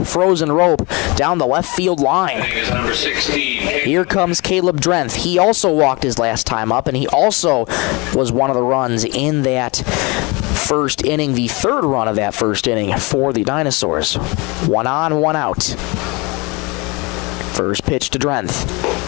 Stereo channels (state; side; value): quieter; right; 26.9 dB